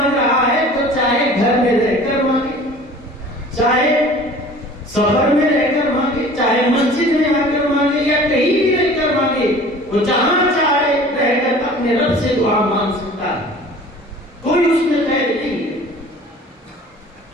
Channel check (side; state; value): both; normal; correlation 0.45